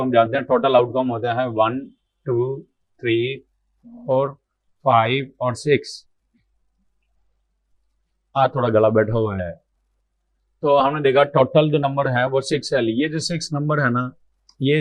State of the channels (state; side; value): identical; both; correlation 1.00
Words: जानते हैं टोटल आउटकम होता है 1 2 3 4 5 और 6। थोड़ा गला बैठा हुआ है। तो हमने देखा टोटल जो नंबर है वो 6 है। ये जो 6 नंबर है ना,